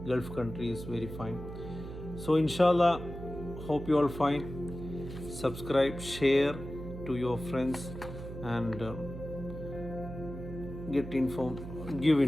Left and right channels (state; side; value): noise; right; hum, 10 dB below the sound